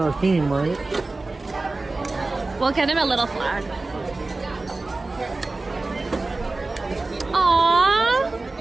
theme, right? We'll get him a little flag. Aww.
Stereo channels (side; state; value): left; quieter; 3.3 dB